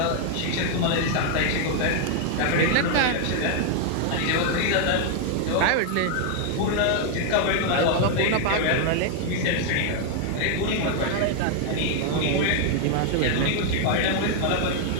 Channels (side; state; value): both; different; correlation 0.00